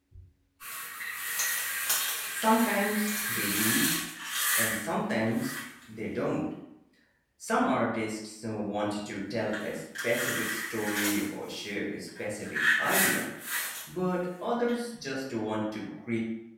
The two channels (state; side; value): identical; both; correlation 1.00